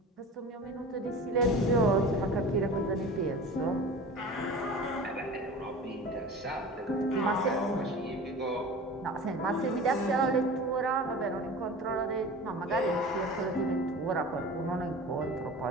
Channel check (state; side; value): normal; both; correlation 0.37